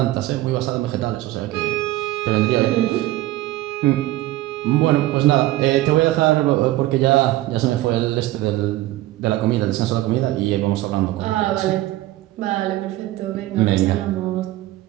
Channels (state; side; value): quieter; left; 16.4 dB